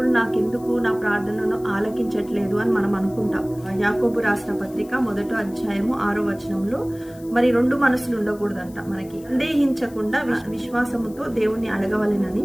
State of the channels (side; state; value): left; noise; hiss, 24 dB below the sound